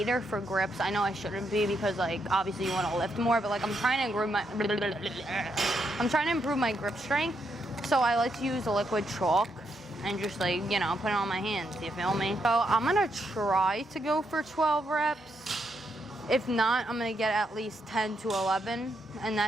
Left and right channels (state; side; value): normal; both; correlation 0.79